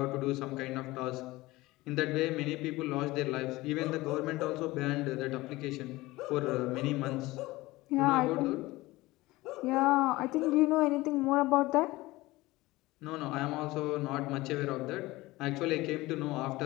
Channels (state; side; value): quieter; right; 19.6 dB